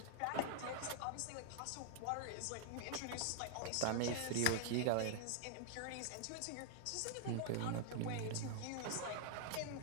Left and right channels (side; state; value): both; different; correlation 0.00